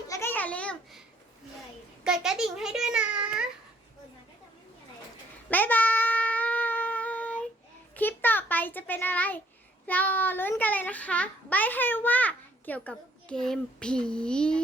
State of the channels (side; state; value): both; normal; correlation 0.64